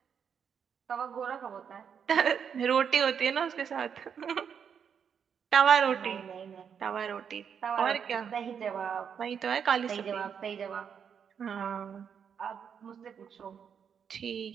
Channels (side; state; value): left; quieter; 7.4 dB